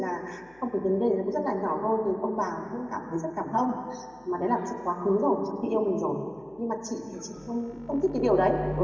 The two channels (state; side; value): noise; left; hum, 29 dB below the sound